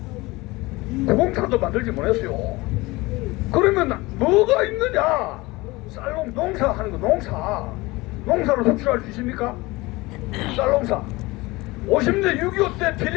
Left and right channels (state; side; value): quieter; right; 21.8 dB